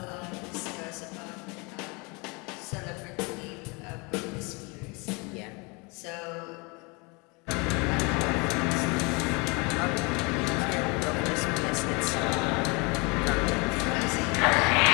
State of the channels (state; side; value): quieter; right; 29.1 dB